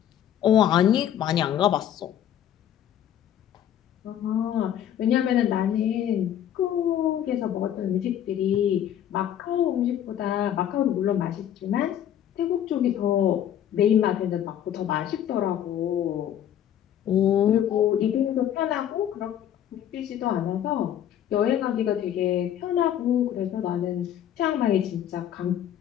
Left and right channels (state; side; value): quieter; right; 10.4 dB